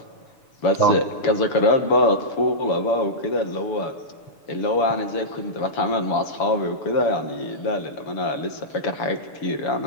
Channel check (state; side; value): late; right; 6.9 ms